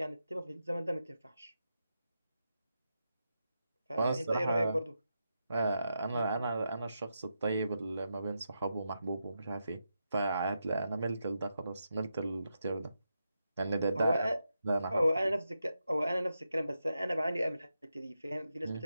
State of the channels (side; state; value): both; inverted; correlation -0.86